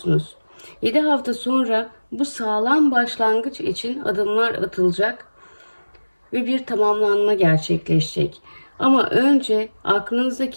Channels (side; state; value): both; inverted; correlation -1.00